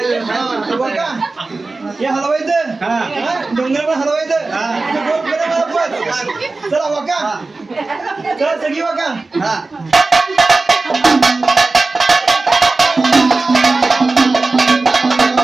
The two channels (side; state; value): left; quieter; 3.5 dB